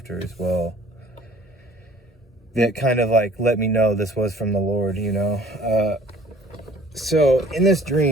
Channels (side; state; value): both; normal; correlation 0.53